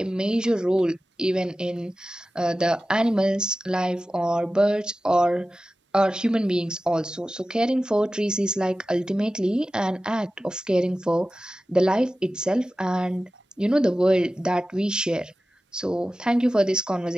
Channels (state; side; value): normal; both; correlation 0.95